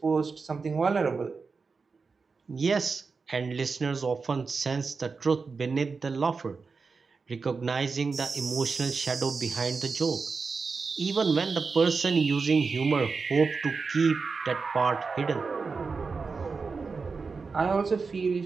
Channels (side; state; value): left; quieter; 4.7 dB